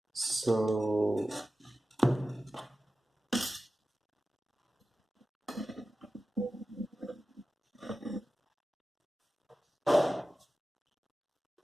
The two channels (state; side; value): normal; both; correlation 0.94